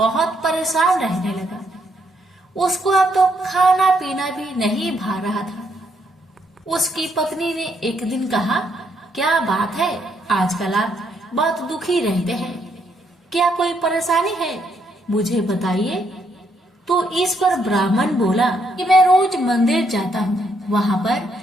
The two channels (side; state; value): both; normal; correlation 0.74